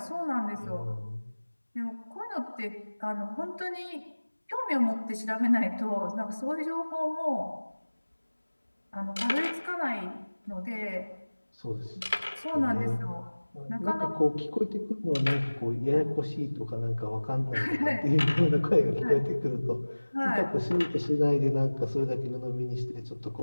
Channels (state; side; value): inverted; both; correlation -1.00